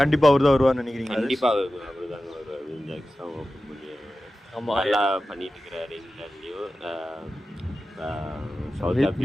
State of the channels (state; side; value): normal; both; correlation 0.94